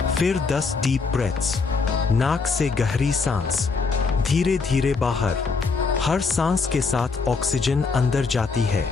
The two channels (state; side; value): quieter; right; 4.6 dB